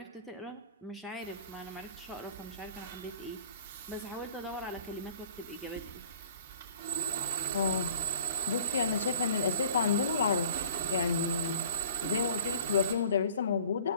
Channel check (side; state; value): both; inverted; correlation -0.49